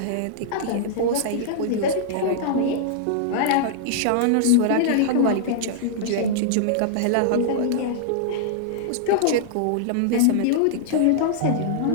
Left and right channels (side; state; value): both; different; correlation -0.02